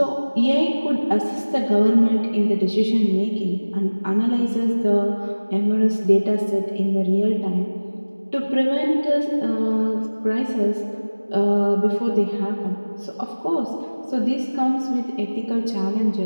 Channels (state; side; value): inverted; both; correlation -1.00